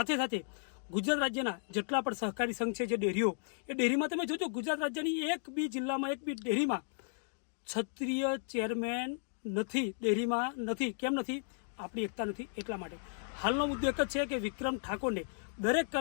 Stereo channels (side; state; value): right; silent; digital silence